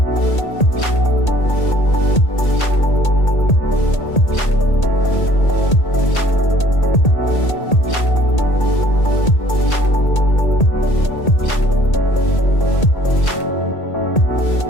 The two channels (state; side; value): late; right; 1.8 ms